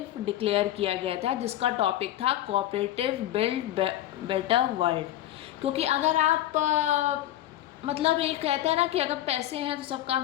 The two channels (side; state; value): right; quieter; 13.3 dB